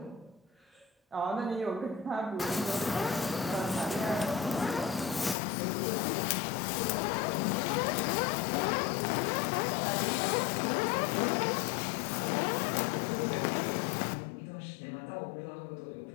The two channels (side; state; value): right; drops out; at 5.4 s